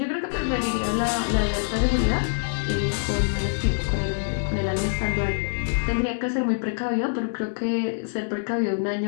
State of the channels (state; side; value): silent; right; digital silence